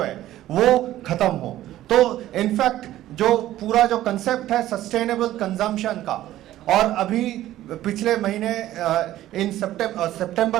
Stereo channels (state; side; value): quieter; left; 14.1 dB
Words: है वो ख़त्म हो। तो इनफैक्ट जो पूरा जो कंसेप्ट है सस्टेनेबल कंजम्पशन का, और अभी पिछले महीने इन